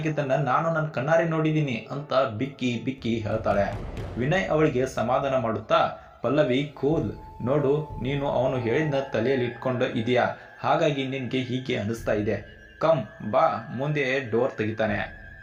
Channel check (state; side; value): identical; both; correlation 1.00